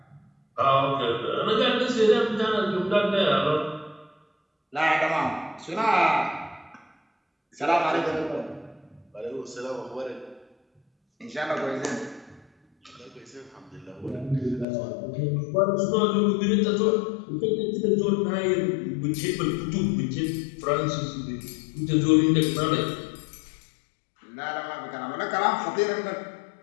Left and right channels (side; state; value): right; drops out; at 14.7 s